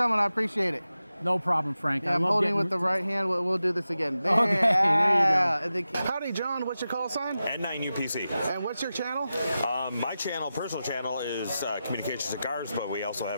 I appreciate it. No problem, Frank. Yeah, I'm holding with the right hand. We'll do this again. There, okay, there you go. Howdy, John. What's your call sign? N9UPC. And what's your channel? My channel, personal channel, is Communication Cigars, but we also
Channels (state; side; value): inverted; both; correlation -0.93